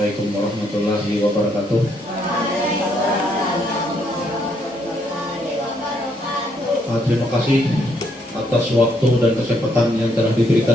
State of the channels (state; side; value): normal; both; correlation 0.72